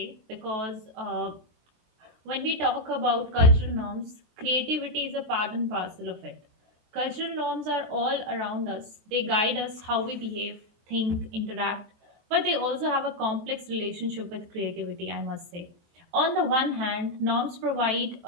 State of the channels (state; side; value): late; left; 23 ms